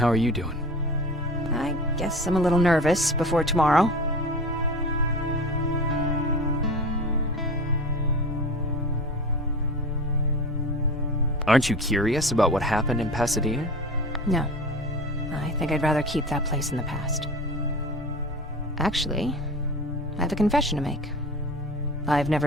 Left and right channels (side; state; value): both; normal; correlation 0.34